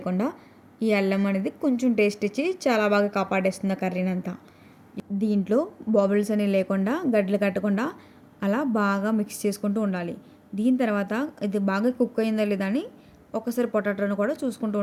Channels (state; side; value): identical; both; correlation 1.00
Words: ఈ అల్లం అనేది కొంచెం టేస్ట్ ఇచ్చి చాలా బాగా కాపాడేస్తుంది కర్రీని అంతా. దీంట్లో బబుల్స్ అని లేకుండా గడ్డలు కట్టకుండా అలా బాగా మిక్స్ చేసుకుంటూ ఉండాలి. దీని తర్వాత ఇది బాగా కుక్ అయిందా లేదా అని ఒకసారి పొటాటోను కూడా చూసుకుంటూ